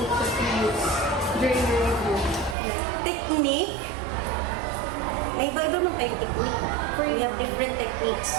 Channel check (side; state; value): left; drops out; at 2.6 s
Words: that you use during your review? Technique, may iba-iba man tayong technique. We have different techniques.